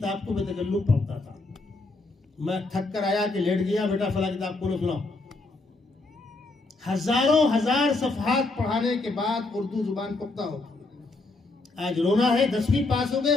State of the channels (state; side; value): quieter; right; 3.2 dB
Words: کو بے تکلف پڑھتا تھا. میں تھک کر آیا کہ لیٹ گیا، بیٹا فلاں کتاب کو سناؤ. ہزار صفحات پڑھانے کے بعد اردو زبان پختہ ہوتی. آج رونا ہے، 10ویں پاس ہو گئے،